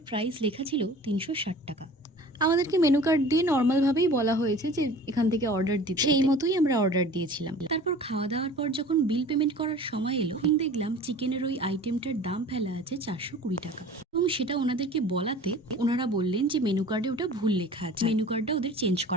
প্রাইস লেখা ছিল 360 টাকা। আমাদেরকে মেনু কার্ড দিয়ে নর্মাল ভাবেই বলা হয়েছে যে এখান থেকে অর্ডার দিতে, সেই মতোই আমরা অর্ডার দিয়েছিলাম। তারপর খাওয়া দাওয়ার পর যখন বিল পেমেন্ট করার সময় এলো, দেখলাম চিকেনের ওই আইটেমটার দাম ফেলা আছে 420 টাকা এবং সেটা ওনাদেরকে বলাতে ওনারা বললেন যে মেনু কার্ডে ওটা ভুল লেখা আছে, মেনু কার্ডটা ওদের চেঞ্জ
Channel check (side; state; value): both; normal; correlation 0.43